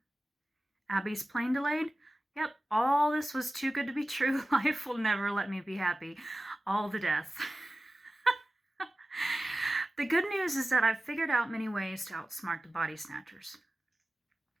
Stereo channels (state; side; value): normal; both; correlation 0.96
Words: Abby's plane delayed, yep, all this was too good to be true. Life will never let me be happy. All the death. The good news is that I've figured out many ways to outsmart the body snatchers.